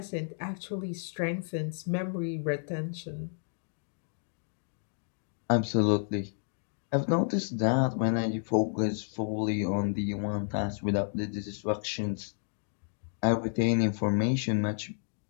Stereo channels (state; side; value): silent; right; digital silence